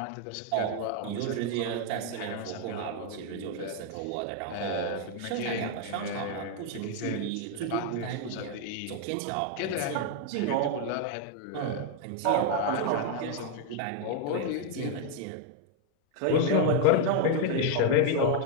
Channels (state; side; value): different; both; correlation 0.00